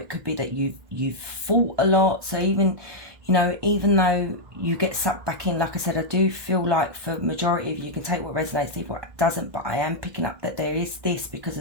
could be that you've fought a lot. So even, you know, even though you get sucked back in, like I said, I do feel like for majority of you, you can take what resonates, leave what doesn't. But I am picking up that there is this, because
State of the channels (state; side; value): late; left; 1.6 ms